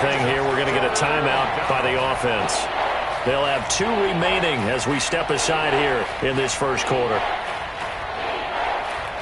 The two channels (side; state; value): both; identical; correlation 1.00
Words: here. We're going to get a timeout by the offense. They'll have 2 remaining as we step aside here in this first quarter.